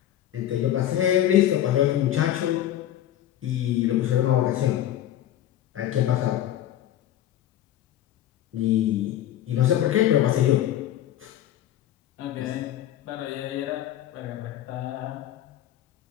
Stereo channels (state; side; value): quieter; right; 12.2 dB